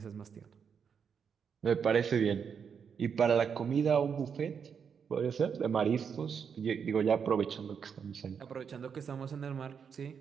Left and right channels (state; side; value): quieter; left; 6.8 dB